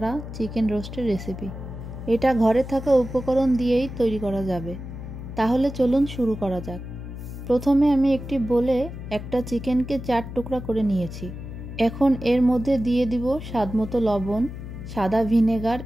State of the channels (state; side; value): noise; left; hum, 10 dB below the sound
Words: চিকেন রোস্টের রেসিপি। এটা ঘরে থাকা উপকরণ দিয়েই তৈরি করা যাবে। তাহলে চলুন শুরু করা যাক। প্রথমে আমি একটি বোলে একটা চিকেনকে 4 টুকরা করে নিয়েছি। এখন এর মধ্যে দিয়ে দিব স্বাদমতো লবণ, সাদা ভিনেগার,